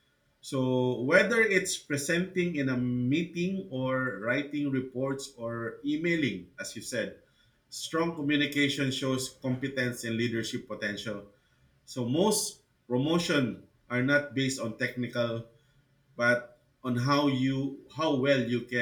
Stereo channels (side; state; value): both; identical; correlation 1.00